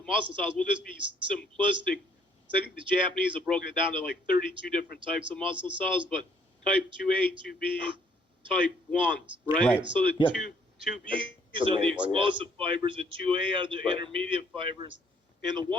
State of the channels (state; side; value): normal; both; correlation 0.64